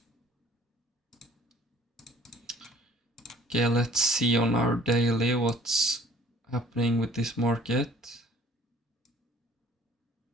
Okay, let's see on our daily what's happening with this market.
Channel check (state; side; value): normal; both; correlation 0.53